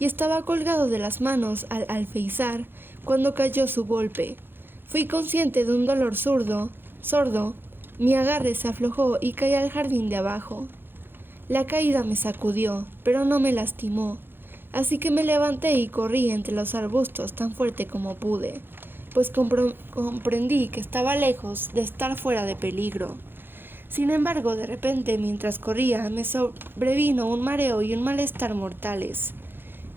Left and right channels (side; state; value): left; late; 0.10 ms